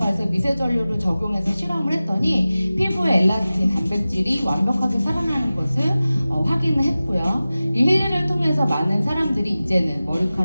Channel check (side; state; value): both; inverted; correlation -0.96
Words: 미세전류를 적용해서 실험을 했더니 피부의 엘라스틴 단백질이 완벽하게 살아나는 것을 확인을 했고요. 이 힐리를 통해서 많은 사람들이 이제는